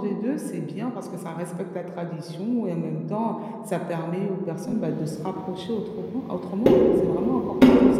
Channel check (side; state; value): both; identical; correlation 1.00